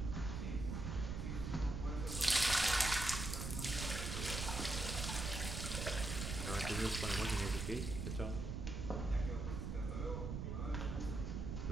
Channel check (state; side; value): noise; right; rumble, 3 dB below the sound